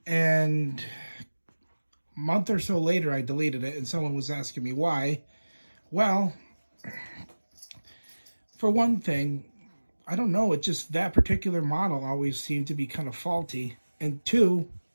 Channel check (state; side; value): inverted; both; correlation -1.00